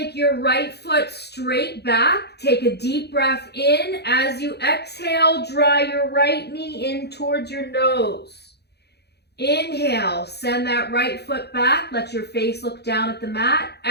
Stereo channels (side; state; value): right; late; 0.48 ms